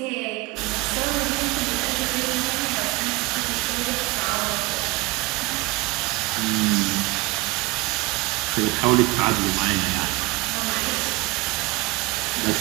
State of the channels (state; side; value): quieter; left; 22.4 dB